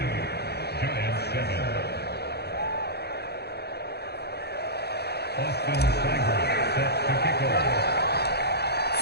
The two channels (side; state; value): right; late; 0.48 ms